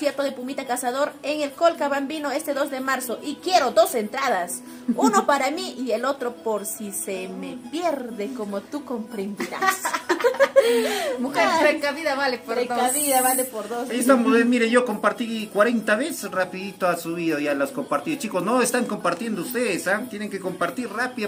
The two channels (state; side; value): identical; both; correlation 1.00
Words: de Pumita Cazador en el Colca Bambino este 2 de marzo. Y quiero 2 entradas. Uno para mí y el otro por si se me pierde, como tú comprenderás. Mujer precavida vale por Precavida vale por 2. Ahí estamos, mire, yo compartí 40 veces, rapidito ha subido ya las compartidas. Chicos, no están compartiendo ustedes, tienen que compartir